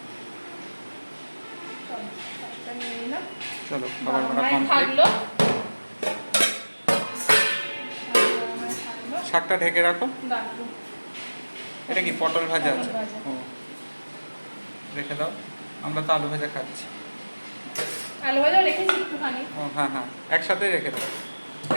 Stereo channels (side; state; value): both; inverted; correlation -1.00